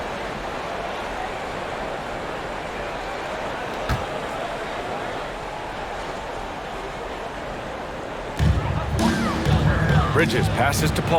Bridges passes to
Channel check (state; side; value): identical; both; correlation 1.00